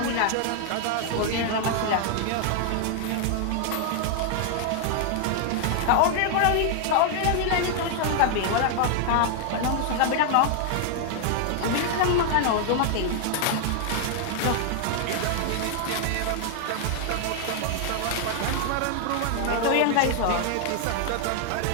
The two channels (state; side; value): different; both; correlation 0.00